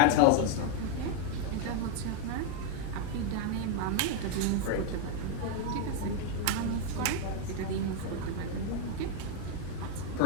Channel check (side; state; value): both; different; correlation 0.00